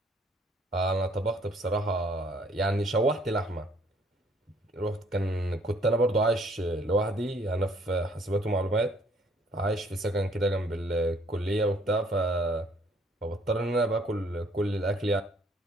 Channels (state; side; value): normal; both; correlation 0.62